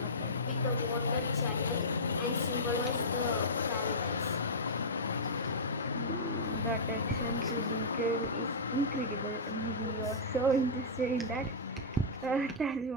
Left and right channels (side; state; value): both; normal; correlation -0.13